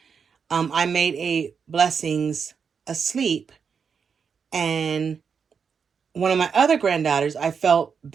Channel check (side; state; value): left; quieter; 6.3 dB